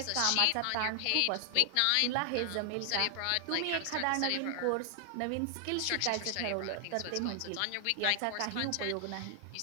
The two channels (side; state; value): both; different; correlation 0.00